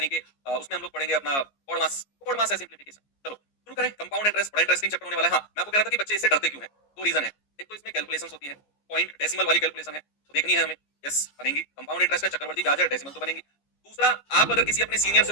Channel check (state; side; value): late; right; 14 ms